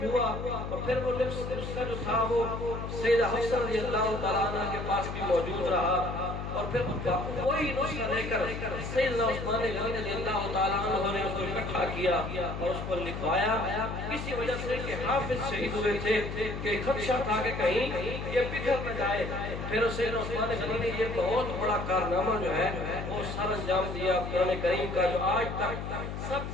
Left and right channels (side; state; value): left; noise; hum, 6 dB below the sound